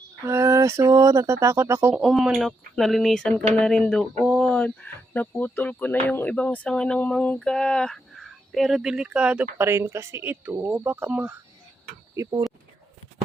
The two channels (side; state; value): both; normal; correlation 0.80